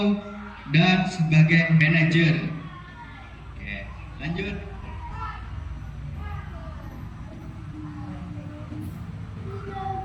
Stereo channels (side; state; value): both; identical; correlation 1.00